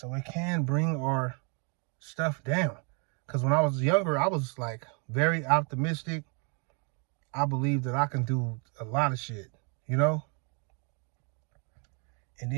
it can bring our stuff down. Because when I was younger, I was like very optimistic. I believe that I can do a lot of shit, you know? And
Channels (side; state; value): left; quieter; 36.3 dB